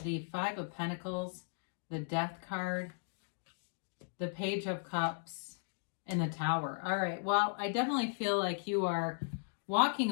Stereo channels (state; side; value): silent; right; digital silence